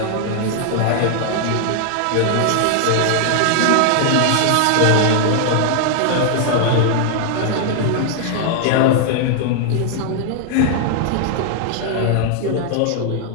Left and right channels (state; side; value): different; both; correlation 0.00